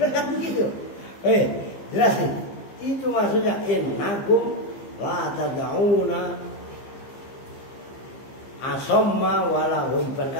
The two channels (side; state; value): right; late; 15 ms